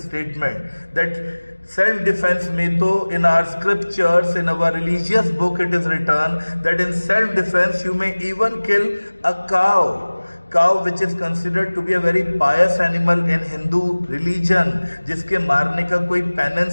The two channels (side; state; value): both; inverted; correlation -1.00